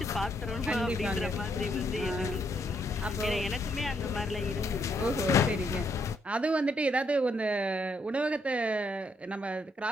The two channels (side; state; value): both; normal; correlation 0.74